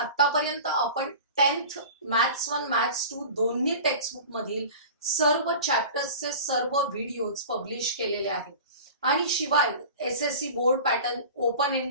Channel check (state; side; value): inverted; both; correlation -0.37